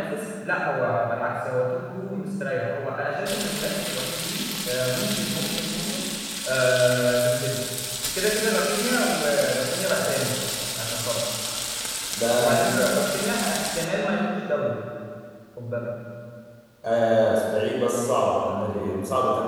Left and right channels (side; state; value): both; identical; correlation 1.00